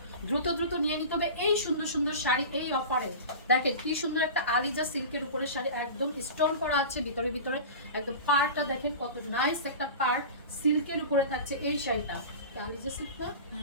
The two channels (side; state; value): both; inverted; correlation -0.33